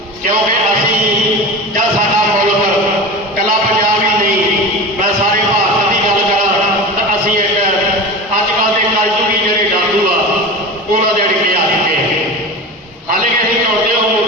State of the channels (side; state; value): both; normal; correlation 0.30